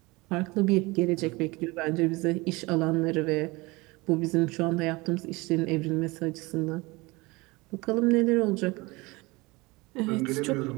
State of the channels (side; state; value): left; quieter; 23.6 dB